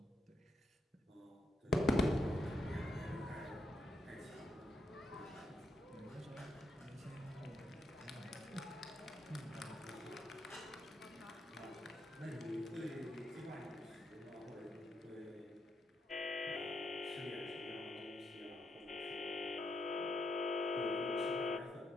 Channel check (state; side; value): normal; both; correlation 0.80